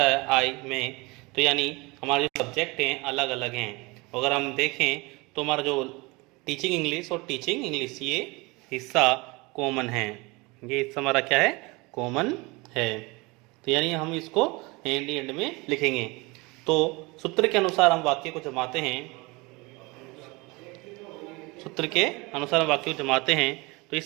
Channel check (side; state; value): left; quieter; 25.2 dB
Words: आई, में, तो यानी हमारे जो सब्जेक्ट हैं अलग अलग हैं। अगर हम देखें तो हमारा जो टीचिंग इंग्लिश और टीचिंग इंग्लिश ये हिस्सा कॉमन है, ये हिस्सा हमारा क्या है, कॉमन है। तो यानी हम इसको एंड में लिखेंगे। तो सूत्र के अनुसार हम वाक्य को जमाते हैं, तो